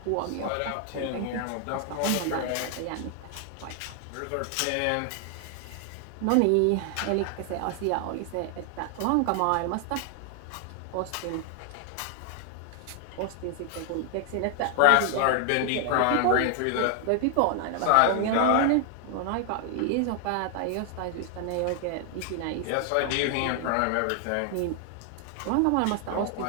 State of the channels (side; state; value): both; different; correlation 0.00